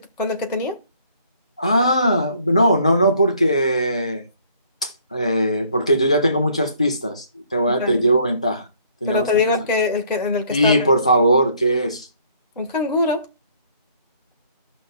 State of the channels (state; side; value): inverted; both; correlation -0.62